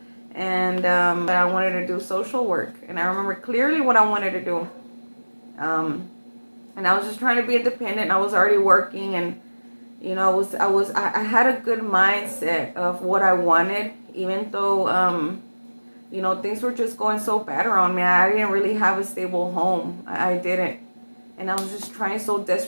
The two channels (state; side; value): inverted; both; correlation -1.00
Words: and I wanted to do social work, and I remember clearly what I wanted to do. And I was just trying to be independent. I was already working, and I had a good mindset of what I wanted, even though things were just going so bad around me. I didn't really have a stable home. I didn't, and I was just trying so